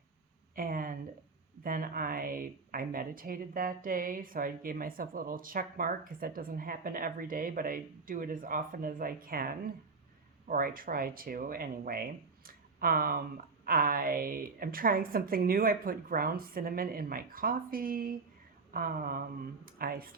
and then I meditated that day, so I gave myself a little check mark because that doesn't happen every day, but I do it as often as I can, or I try to anyway. I am trying something new. I put ground cinnamon in my coffee. I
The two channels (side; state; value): left; quieter; 4.3 dB